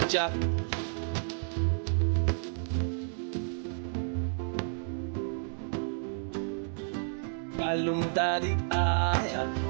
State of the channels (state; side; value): silent; left; digital silence